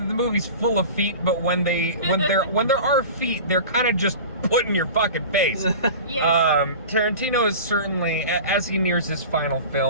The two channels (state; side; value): inverted; both; correlation -0.36